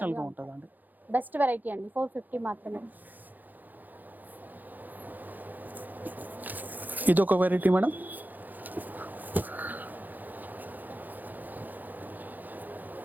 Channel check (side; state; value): left; late; 0.084 ms